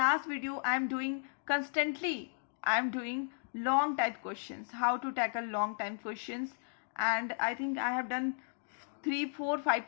video I am doing long type questions, how to tackle long time questions, and I think I have done 3 4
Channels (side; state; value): right; silent; digital silence